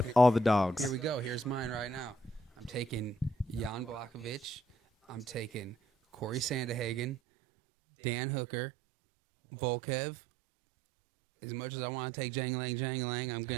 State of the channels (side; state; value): left; drops out; at 7.2 s